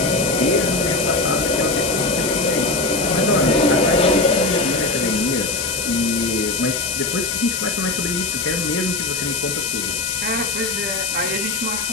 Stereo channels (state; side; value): noise; left; hiss, 2 dB below the sound